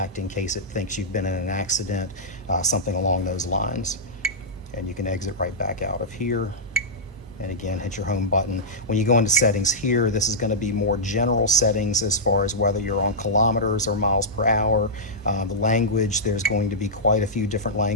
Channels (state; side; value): normal; both; correlation -0.12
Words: in case it thinks you've been in an accident, something along those lines. And you can exit right back out of here. And again, hit your home button. When you go into settings here, this is going to be more general settings as far as whether you're on kilometers or miles per hour. The language, there's going to be quite a few different